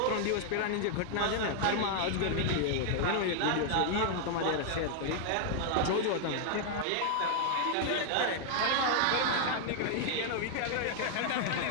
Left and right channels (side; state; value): both; different; correlation 0.00